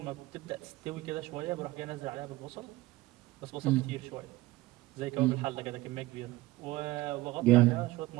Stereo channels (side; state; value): left; quieter; 18.6 dB